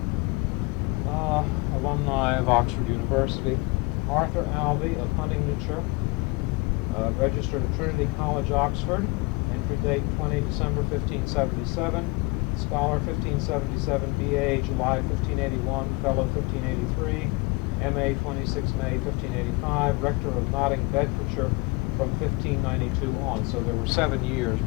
alumni of Oxford University. Arthur Alby of Huntingdonshire, registered at Trinity College, Oxford, entry date 20 December 1577, scholar 1577, B.A. July 1581, fellow 1583, M.A. 26 May 1585, rector of Notting, Bedfordshire from 1592 on. So there were 7 years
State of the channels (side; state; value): right; quieter; 25.4 dB